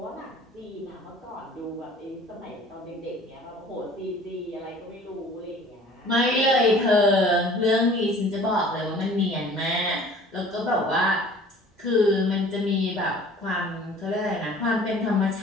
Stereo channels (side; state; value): both; normal; correlation 0.48